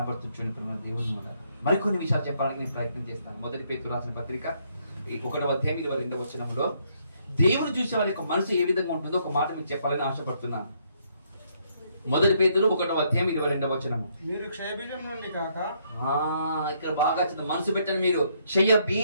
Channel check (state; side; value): inverted; both; correlation -0.72